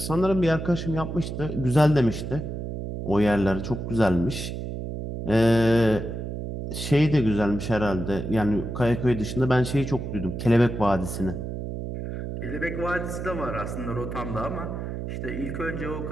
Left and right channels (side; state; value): right; noise; hum, 6 dB below the sound